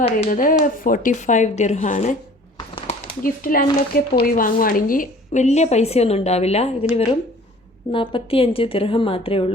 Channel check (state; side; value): normal; both; correlation 0.49